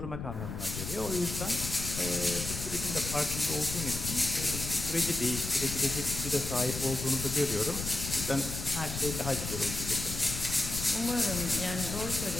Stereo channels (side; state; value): left; noise; rumble, 6 dB below the sound